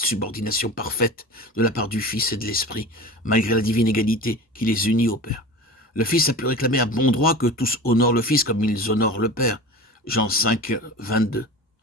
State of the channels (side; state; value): both; normal; correlation 0.33